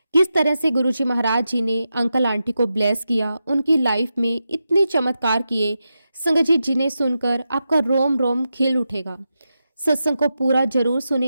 किस तरह से गुरु जी महाराज जी ने अंकल आंटी को ब्लेस किया, उनकी लाइफ में इतने चमत्कार किए, संगत जी जिन्हें सुनकर आपका रोम रोम खिल उठेगा। सत्संग को पूरा जरूर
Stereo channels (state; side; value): inverted; both; correlation -0.89